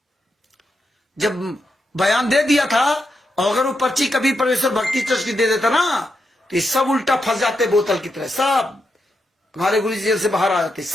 जब बयान दे दिया था, और अगर वो पर्ची कभी परमेश्वर भक्ति ट्रस्ट की दे देता ना, तो ये सब उल्टा फंस जाते बोतल की तरह। सब हमारे गुरु जी जेल से बाहर आ जाते,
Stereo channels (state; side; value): normal; both; correlation 0.84